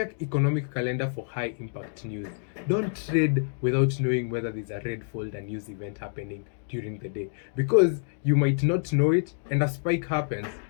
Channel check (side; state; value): right; silent; digital silence